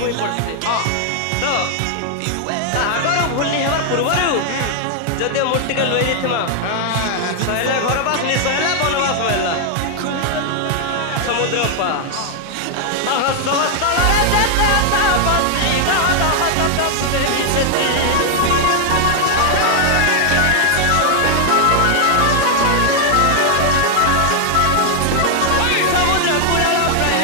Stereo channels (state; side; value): different; both; correlation 0.00